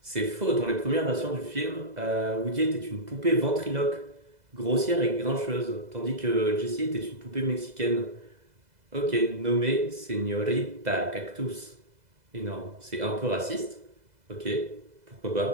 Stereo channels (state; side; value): late; left; 2.0 ms